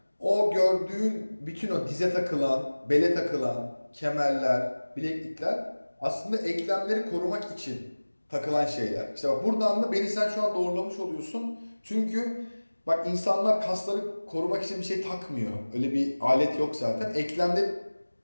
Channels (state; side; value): inverted; both; correlation -1.00